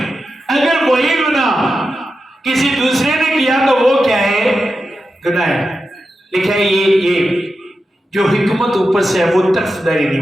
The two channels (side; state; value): both; normal; correlation 0.90